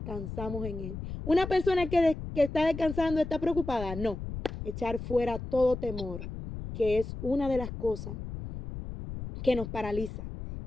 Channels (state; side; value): noise; left; rumble, 8 dB below the sound